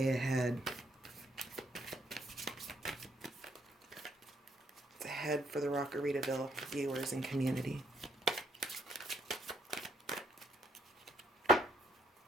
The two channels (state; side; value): normal; both; correlation 0.71